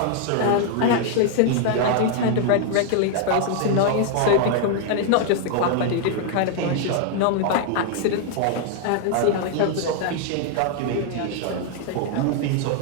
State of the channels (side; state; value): both; different; correlation 0.00